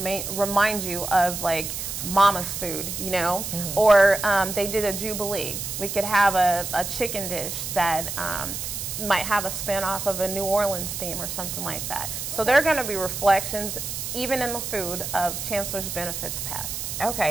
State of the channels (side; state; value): right; noise; hiss, 5 dB below the sound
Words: you of like mama's food, you know, or they did a jubilee. We could have a chicken dish that might have a spin-off of a New Orleans theme or something like that. So there are going to be reflections, even in the food, of Chancellor's Benefits past.